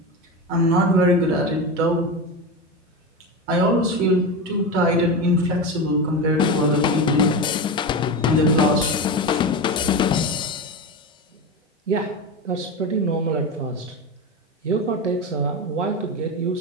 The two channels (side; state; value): both; normal; correlation 0.20